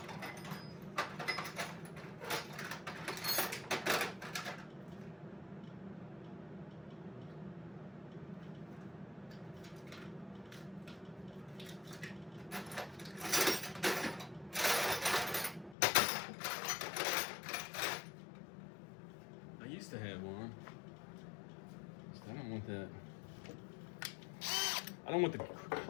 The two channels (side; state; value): right; drops out; at 15.8 s